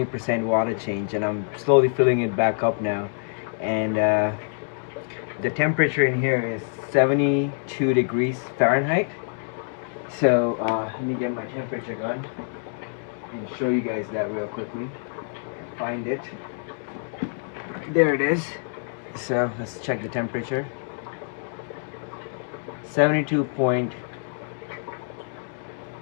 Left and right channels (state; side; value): silent; right; digital silence